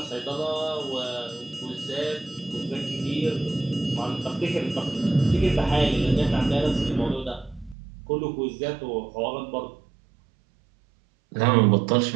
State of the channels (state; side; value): drops out; left; at 7.8 s